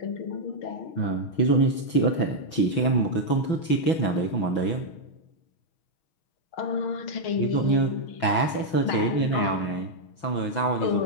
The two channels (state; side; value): late; right; 6.1 ms